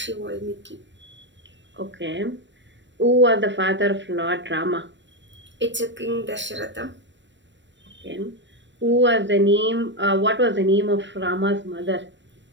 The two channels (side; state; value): left; late; 0.53 ms